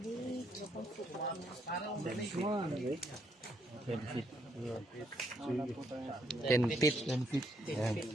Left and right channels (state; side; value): normal; both; correlation 0.73